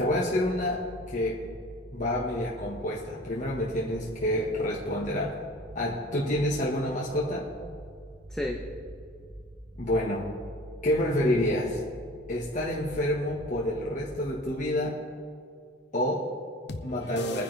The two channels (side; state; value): both; normal; correlation 0.43